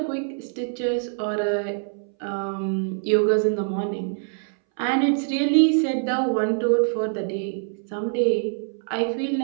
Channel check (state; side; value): silent; left; 62 dB below the other